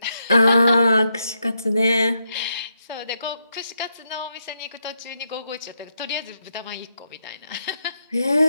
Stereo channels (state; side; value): inverted; both; correlation -0.81